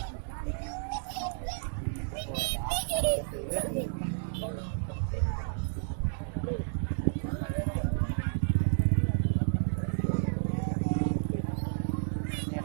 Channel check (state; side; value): silent; left; digital silence